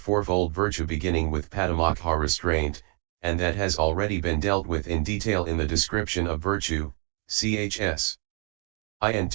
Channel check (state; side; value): quieter; left; 37.3 dB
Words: fourfold virtue beginning with Patimokkha restraint, and that has already been dealt with in detail in the description of virtue, chs.